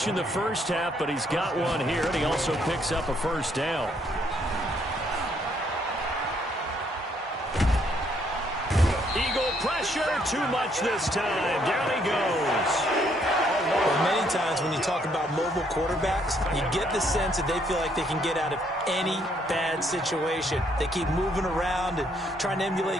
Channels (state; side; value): normal; both; correlation 0.69